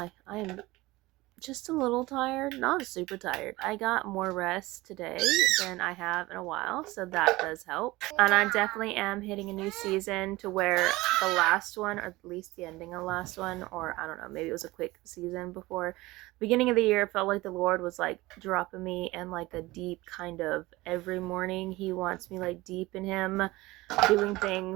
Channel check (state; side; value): quieter; left; 20.0 dB